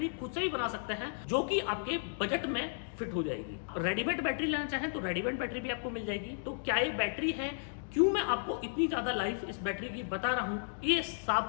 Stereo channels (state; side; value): silent; right; digital silence